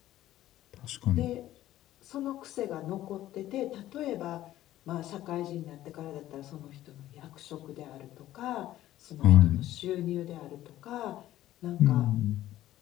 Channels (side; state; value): right; quieter; 14.0 dB